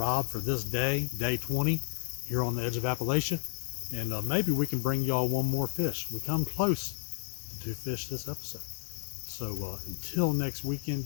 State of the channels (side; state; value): right; silent; digital silence